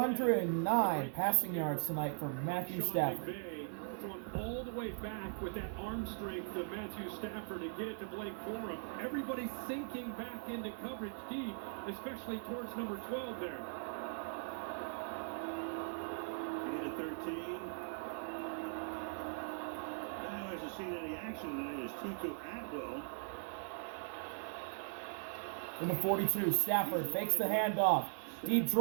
passing yards tonight for Matthew Stafford. Thrown all the way back with that arm strength of Matthew Stafford to get it to Blake Corum. Everybody's sinking back into coverage deep, especially towards number 12 there. Gain of 13. Now hasn't seen any action tonight is Tutu Atwell. In the 42, Stafford fakes the handoff. Deep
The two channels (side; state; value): left; silent; 51 dB below the other